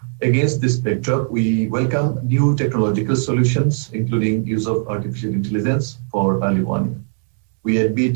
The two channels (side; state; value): left; silent; digital silence